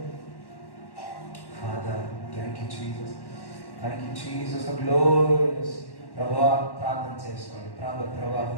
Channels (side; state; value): right; late; 1.1 ms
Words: Father, thank you, Jesus. Thank you, Jesus. The glorious. ప్రభా ప్రార్థన చేసుకోండి. ప్రభా